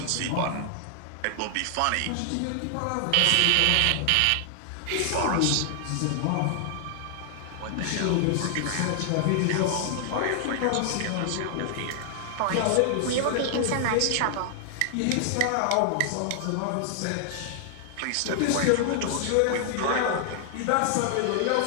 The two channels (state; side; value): different; both; correlation 0.00